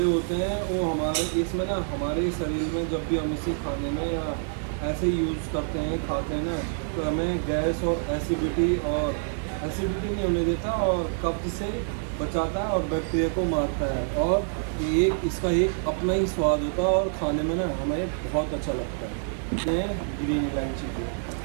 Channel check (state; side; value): silent; left; digital silence